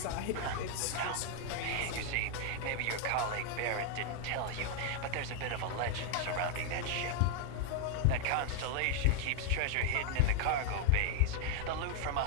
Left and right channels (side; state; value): both; different; correlation 0.00